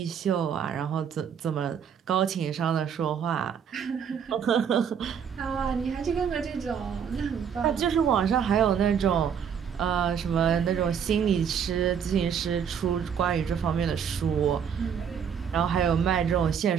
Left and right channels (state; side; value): quieter; left; 7.6 dB